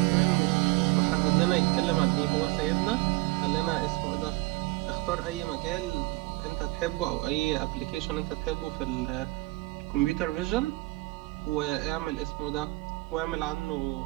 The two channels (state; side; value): quieter; left; 22.2 dB